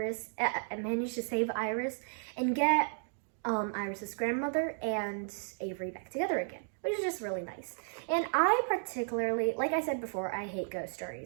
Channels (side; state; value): left; silent; digital silence